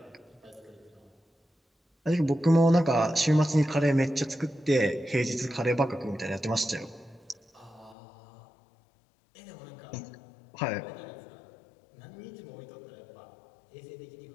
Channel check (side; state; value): right; drops out; at 8.0 s